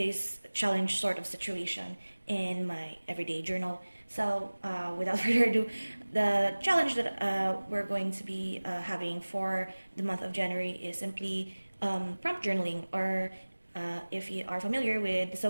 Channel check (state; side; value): inverted; both; correlation -1.00